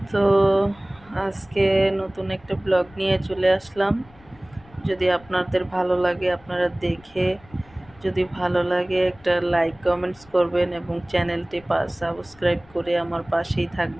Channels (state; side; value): noise; left; rumble, 26 dB below the sound